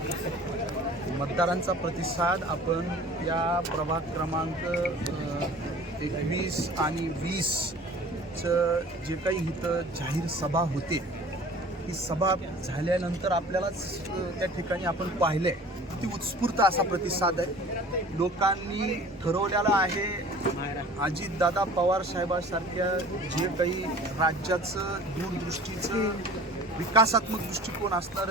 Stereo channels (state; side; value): normal; both; correlation 0.45